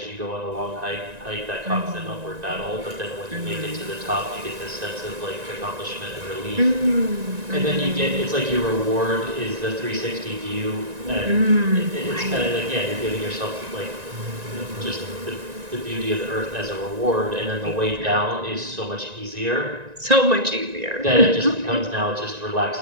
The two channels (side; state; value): left; late; 1.9 ms